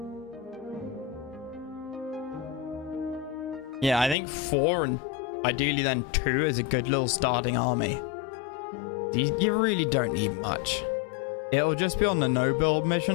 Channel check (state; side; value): drops out; right; at 4.2 s